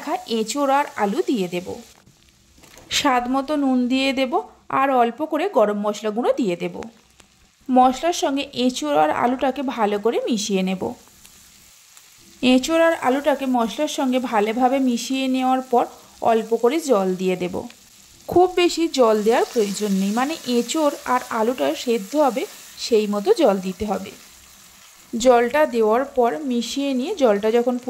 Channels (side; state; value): both; identical; correlation 1.00